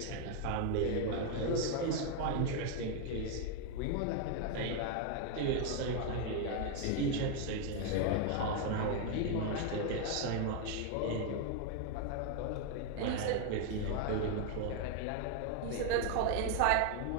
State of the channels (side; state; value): both; different; correlation 0.01